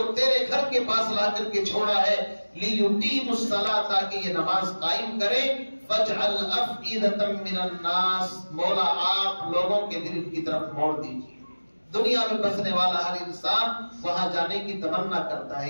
تیرے گھر کے پاس لا کر کے چھوڑا ہے، لیقیم الصلاۃ، تاکہ یہ نماز قائم کرے، فاجعل افئدۃ من الناس، مولا آپ لوگوں کے دل کی طرف موڑ دیجیے۔ دنیا میں بسنے والا ہر انسان وہاں جانے کی تمنا کرتا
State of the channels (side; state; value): both; inverted; correlation -1.00